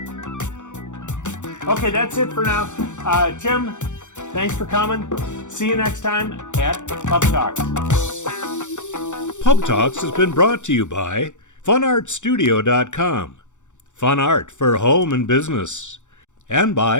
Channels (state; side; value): late; right; 0.85 ms